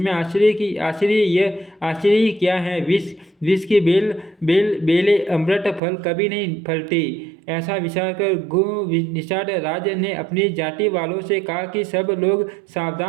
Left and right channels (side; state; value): left; drops out; at 5.8 s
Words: आश्चर्य क्या है? विष की बेले अमृत फल कभी नहीं फलती। ऐसा विचार कर निषाद राज ने अपनी जाति वालों से कहा कि सब लोग